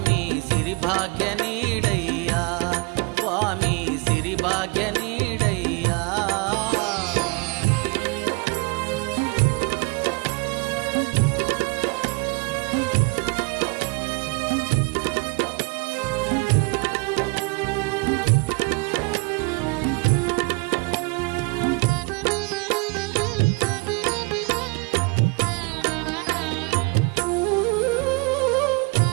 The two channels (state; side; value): quieter; left; 29.2 dB